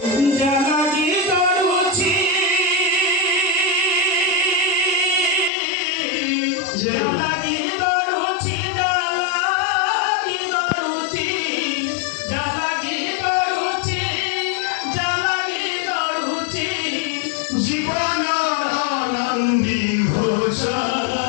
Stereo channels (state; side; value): drops out; right; at 5.5 s